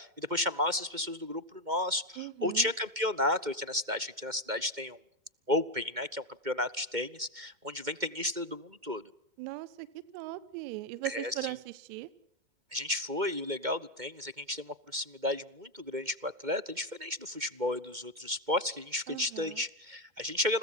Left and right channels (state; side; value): late; left; 2.1 ms